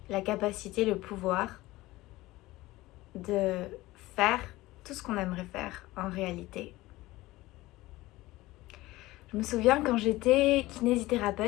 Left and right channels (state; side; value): quieter; right; 18.6 dB